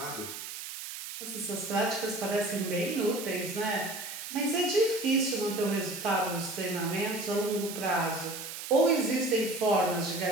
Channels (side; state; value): right; noise; hiss, 9 dB below the sound